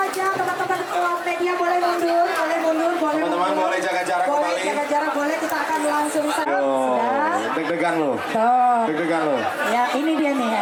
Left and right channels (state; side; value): identical; both; correlation 1.00